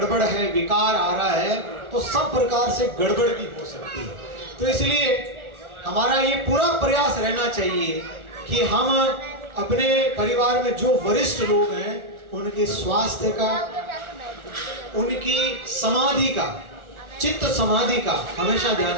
है, विकार आ रहा है, तो सब प्रकार से गड़बड़ भी हो सकती है। तो इसलिए हमारा ये पूरा प्रयास रहना चाहिए कि हम अपने परिवार में जो वरिष्ठ लोग हैं उनके स्वास्थ्य का, उनकी समाधि का, चित्त समाधि का हमेशा ध्यान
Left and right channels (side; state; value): left; late; 1.4 ms